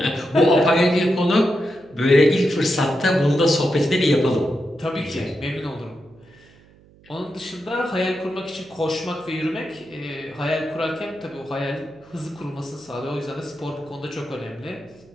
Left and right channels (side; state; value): right; noise; hum, 27 dB below the sound